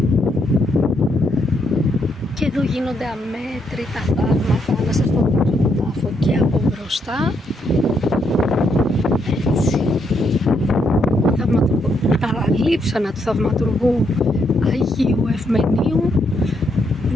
Και εδώ γίνονται αμέτρητα θαύματα. Να σας το δείξω τον τάφο και από μπροστά. Έτσι. Τα λείψανα του θαυματουργού Αγίου Ευμενίου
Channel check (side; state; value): both; normal; correlation 0.76